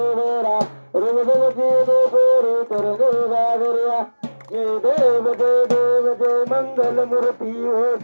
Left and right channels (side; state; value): both; inverted; correlation -1.00